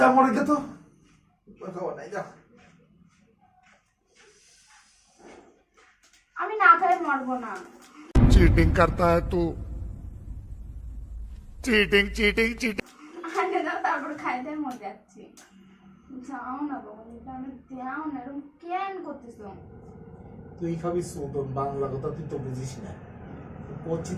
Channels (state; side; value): identical; both; correlation 1.00